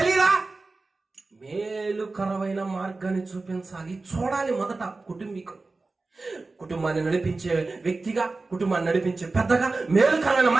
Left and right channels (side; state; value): left; quieter; 3.6 dB